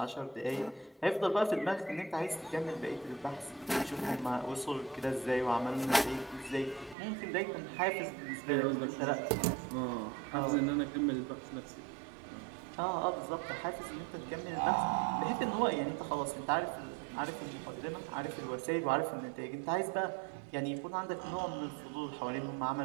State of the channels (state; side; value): drops out; left; at 7.0 s